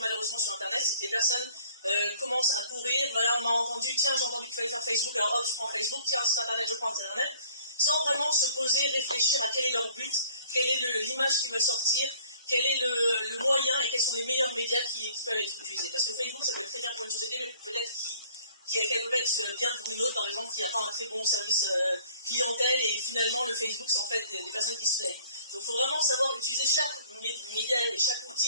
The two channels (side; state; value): both; inverted; correlation -0.56